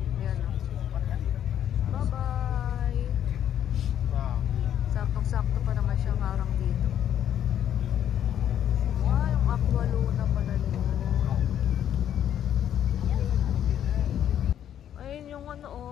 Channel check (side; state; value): right; quieter; 10.1 dB